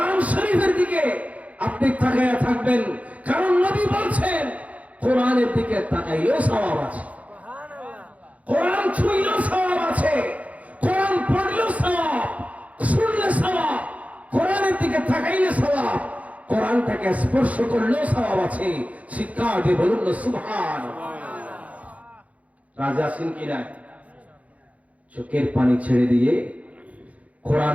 শরীফের দিকে আপনি তাকায়া থাকবেন। কারণ নবী বলছেন কোরআনের দিকে তাকাইলেও সওয়াব আছে, কোরআন ছুঁইলেও সওয়াব আছে, কোরআন পড়লেও সওয়াব, শুনলে সওয়াব, কোরআনের দিকে তাকাইলে সওয়াব, কোরআনটাকে স্পর্শ করলেও সওয়াব আছে। শিক্ষা দিয়ে বলুন না সুবহানাল্লাহ। রাজা সিং কি নাই, চোখের পানি ছেড়ে দিয়ে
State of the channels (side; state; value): left; late; 0.068 ms